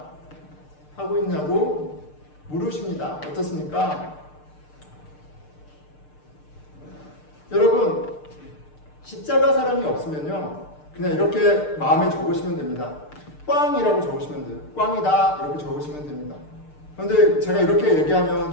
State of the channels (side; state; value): right; late; 6.6 ms